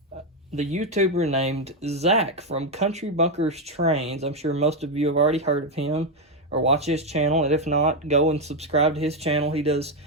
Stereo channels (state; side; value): normal; both; correlation 0.05